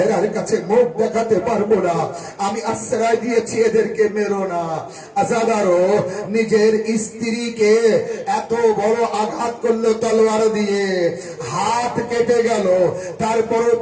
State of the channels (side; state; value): both; identical; correlation 1.00